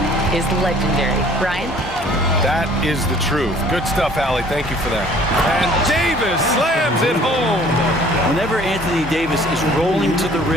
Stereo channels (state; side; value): normal; both; correlation 0.54